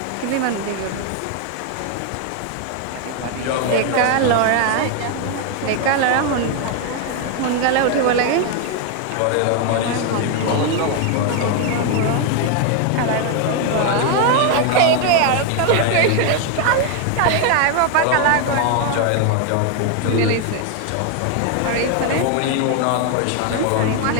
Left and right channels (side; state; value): both; different; correlation 0.01